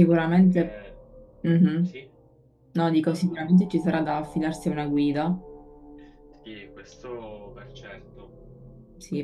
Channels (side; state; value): both; identical; correlation 1.00